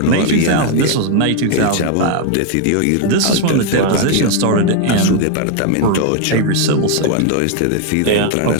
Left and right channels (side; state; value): both; different; correlation 0.01